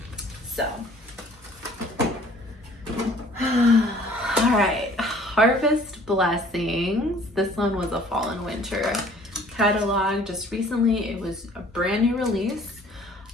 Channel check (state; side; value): normal; both; correlation 0.54